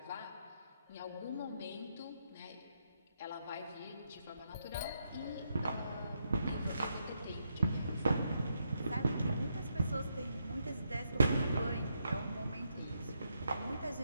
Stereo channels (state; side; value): inverted; both; correlation -0.80